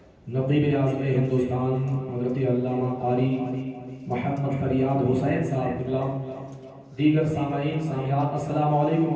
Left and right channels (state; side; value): identical; both; correlation 1.00